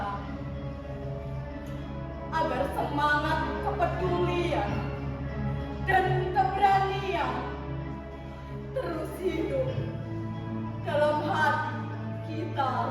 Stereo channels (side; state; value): both; identical; correlation 1.00